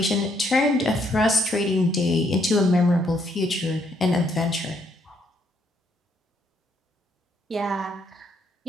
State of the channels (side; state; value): both; normal; correlation 0.72